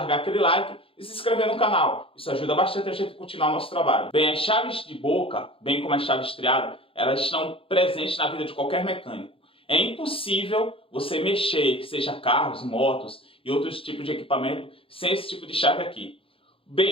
aquele like e se inscrever no canal. Isso ajuda bastante a gente a continuar o nosso trabalho. Bem, as chaves de boca, bem como as chaves triadas, elas estão presentes na vida de qualquer mecânico. É impossível você mexer, seja carros, motos e outros tipos de equipamento, sem esse tipo de chave aqui.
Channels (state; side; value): late; right; 0.27 ms